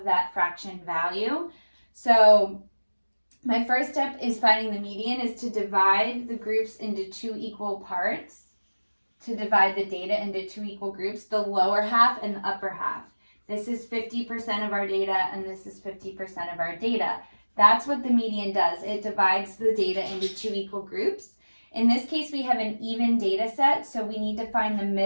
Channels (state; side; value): inverted; both; correlation -1.00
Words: that fraction value. So my first step is finding the median is to divide the groups into 2 equal parts, to divide the data into 2 equal groups, the lower half and the upper half. This is 50% of our data and this is 50% of our data. That's what the median does. It divides the data into 2 equal groups. In this case, we have an even data set, so we need to find the